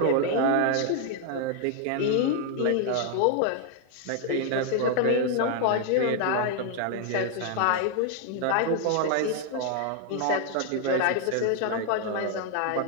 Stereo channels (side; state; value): both; different; correlation 0.00